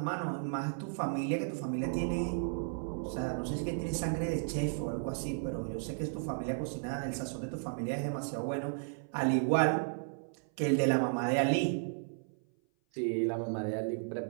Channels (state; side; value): silent; left; 55 dB below the other